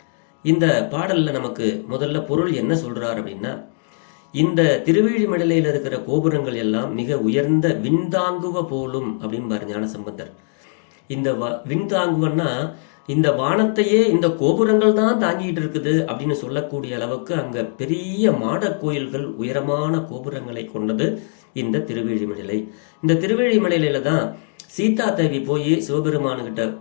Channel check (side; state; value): right; silent; 65 dB below the other